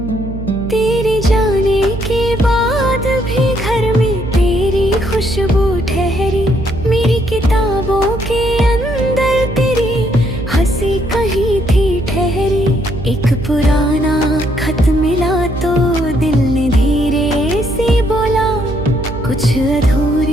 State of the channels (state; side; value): noise; right; hum, 8 dB below the sound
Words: तेरे जाने के बाद भी घर में तेरी खुशबू ठहरी, मेरी किताबों के अंदर तेरी हंसी कहीं थी ठहरी। एक पुराना खत मिला तो दिल ने धीरे से बोला, कुछ